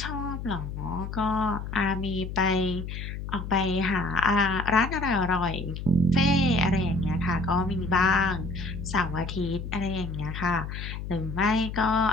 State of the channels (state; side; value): noise; left; hum, 7 dB below the sound